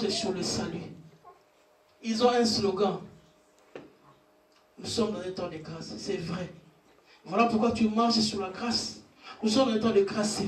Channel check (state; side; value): identical; both; correlation 1.00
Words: sur le salut. Ils ont un slogan. Nous sommes dans un temps de grâce, c'est vrai. Voilà pourquoi tu marches sur la grâce. Nous sommes dans un temps de grâce,